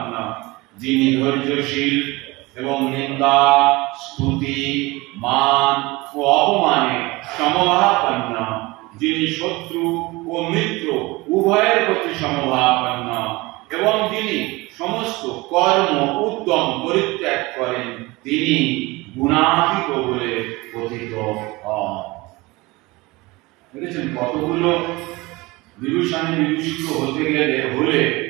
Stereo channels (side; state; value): left; quieter; 22.5 dB